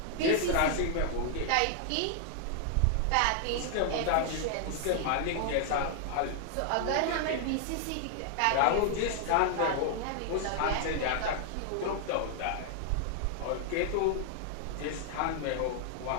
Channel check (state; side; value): different; both; correlation 0.00